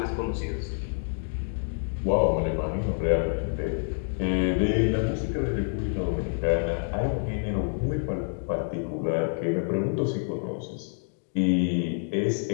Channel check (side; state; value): right; silent; digital silence